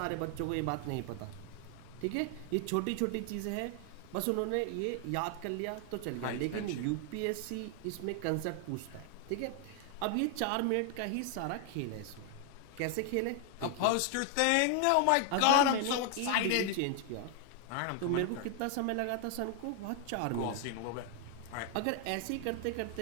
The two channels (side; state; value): both; different; correlation 0.00